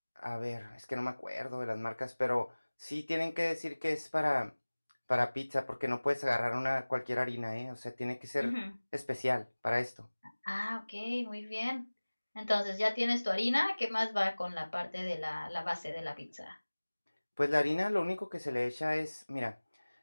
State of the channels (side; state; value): both; inverted; correlation -1.00